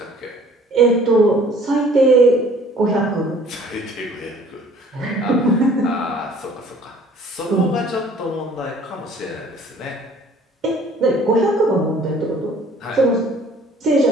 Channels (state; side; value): normal; both; correlation 0.54